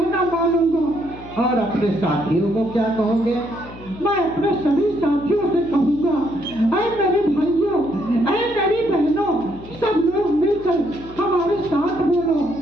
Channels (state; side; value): noise; left; hum, 18 dB below the sound